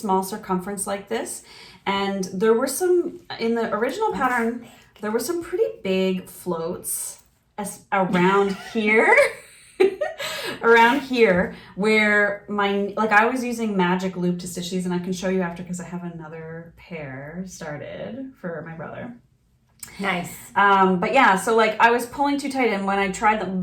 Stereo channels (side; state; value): both; identical; correlation 1.00